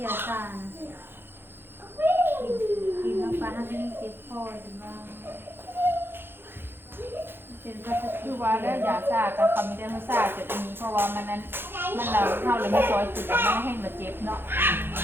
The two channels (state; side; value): late; left; 0.10 ms